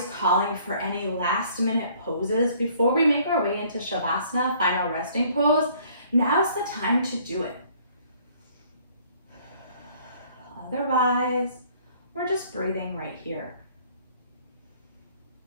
calling for any last minute poses before we make our way into Shavasana, final resting pose, now's the time to do it. Otherwise, we're just breathing right here.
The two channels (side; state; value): both; inverted; correlation -0.59